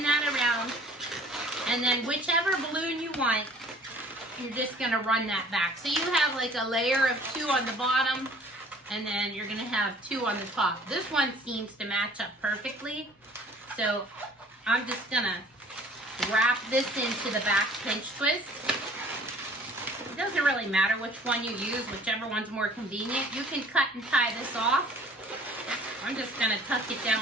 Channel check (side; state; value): both; normal; correlation 0.52